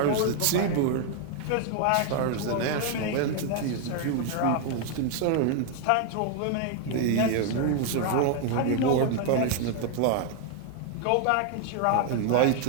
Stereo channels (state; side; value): different; both; correlation 0.00